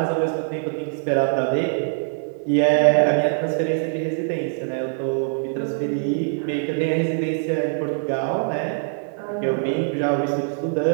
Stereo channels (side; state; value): left; silent; 57 dB below the other